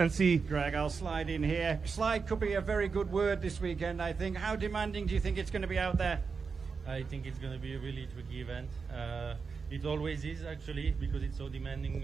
Greg, I'll slide in here. Slide could be a very good word this weekend, I think. How demanding do you think it's going to be out there? I think it's going to be a really tricky event. It always is, actually, because it's so demanding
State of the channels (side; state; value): left; quieter; 5.2 dB